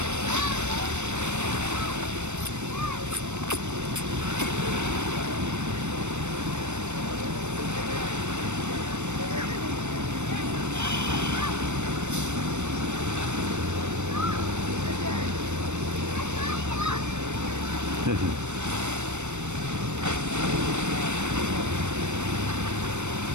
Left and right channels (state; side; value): late; left; 0.83 ms